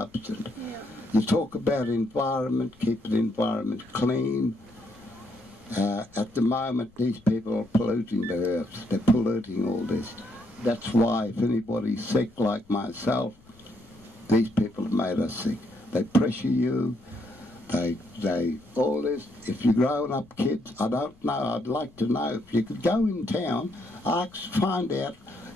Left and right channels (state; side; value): noise; left; rumble, 28 dB below the sound